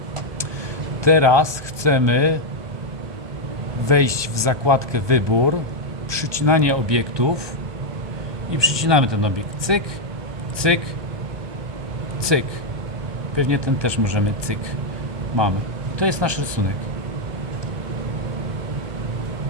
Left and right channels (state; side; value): late; left; 1.2 ms